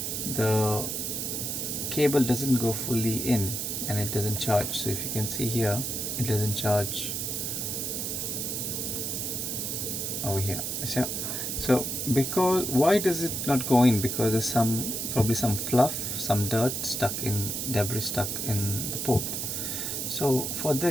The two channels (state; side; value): noise; right; hiss, 2 dB below the sound